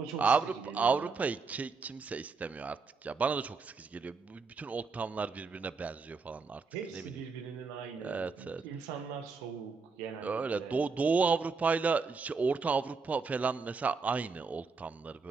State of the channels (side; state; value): left; quieter; 4.7 dB